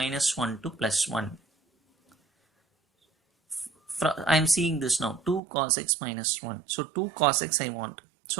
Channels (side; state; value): left; drops out; at 5.4 s